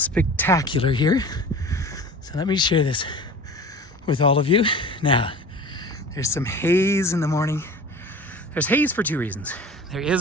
here. So let me share this with all of you. Now, there's some haze in the morning. There's haze for two reasons. There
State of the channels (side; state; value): both; normal; correlation 0.39